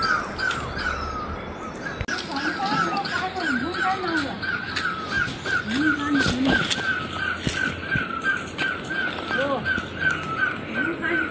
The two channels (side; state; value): both; identical; correlation 1.00